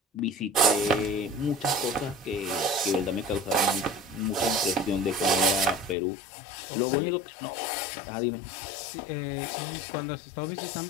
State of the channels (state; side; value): drops out; right; at 6.0 s